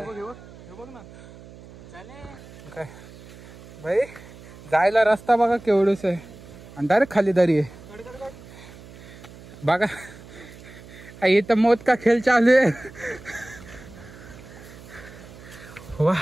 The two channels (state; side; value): noise; right; hum, 19 dB below the sound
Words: बघ ना काय भाई, जायला रस्ता बघा केवढूच आहे आणि डायरेक्ट खाली दरी आहे बघा। इथं मौत का खेळ चालू आहे।